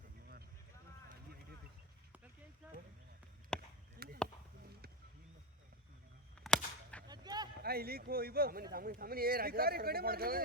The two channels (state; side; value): normal; both; correlation 0.12